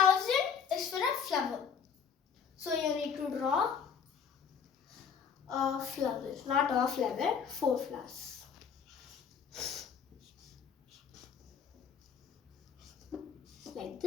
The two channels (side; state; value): right; quieter; 6.9 dB